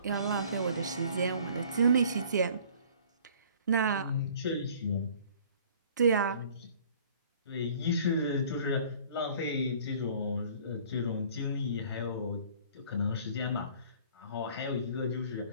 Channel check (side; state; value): both; inverted; correlation -0.52